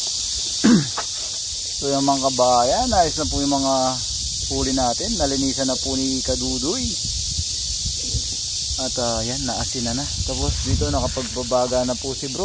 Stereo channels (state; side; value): identical; both; correlation 1.00